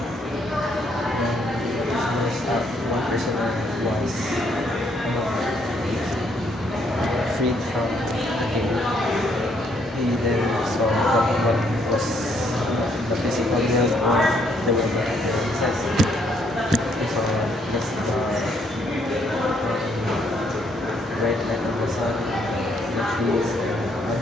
One person was freed from the cave. He then saw what was the physical world or the world that exists. He saw just the bright light of the sun, the trees, and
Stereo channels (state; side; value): normal; both; correlation 0.70